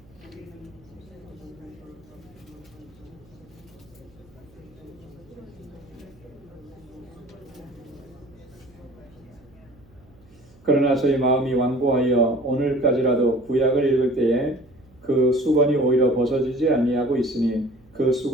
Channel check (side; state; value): right; noise; hum, 27 dB below the sound